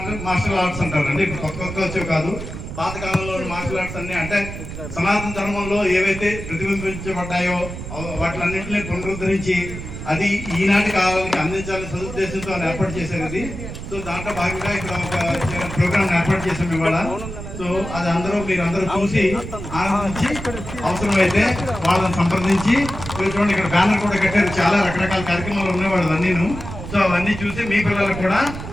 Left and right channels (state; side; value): noise; right; rumble, 9 dB below the sound